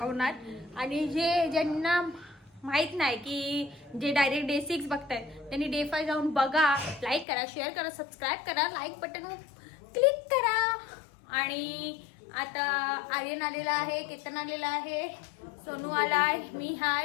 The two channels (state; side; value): drops out; right; at 7.2 s